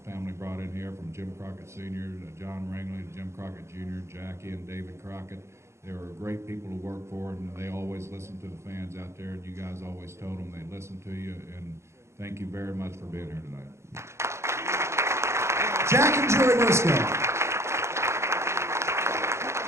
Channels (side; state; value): left; late; 0.13 ms